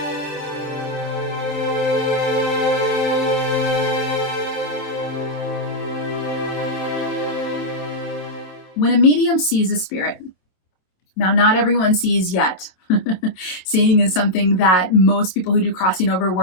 When a medium sees a spirit, now not everyone sees yet. Seeing is something that most people who do crossing over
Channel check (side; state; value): right; late; 27 ms